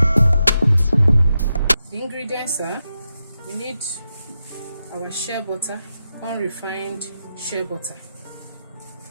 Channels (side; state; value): both; inverted; correlation -0.88